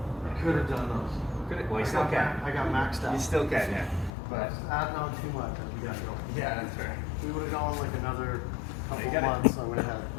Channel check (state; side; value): drops out; right; at 4.1 s